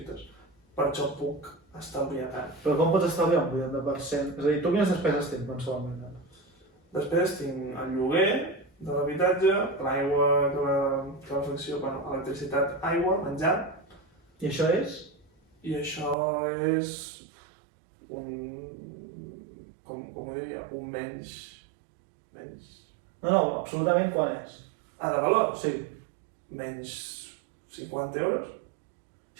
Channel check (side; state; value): left; drops out; at 16.2 s